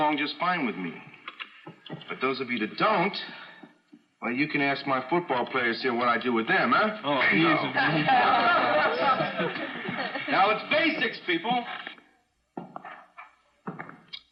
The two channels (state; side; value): identical; both; correlation 1.00